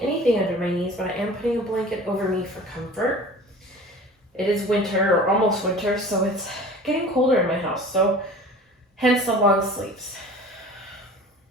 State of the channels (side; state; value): both; normal; correlation 0.42